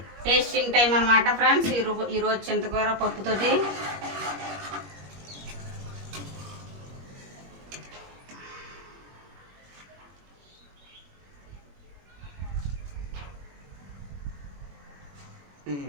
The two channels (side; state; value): left; late; 21 ms